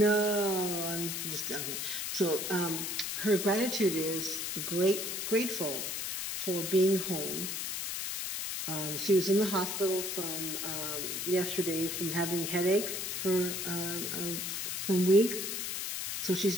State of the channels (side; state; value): left; noise; hiss, 3 dB below the sound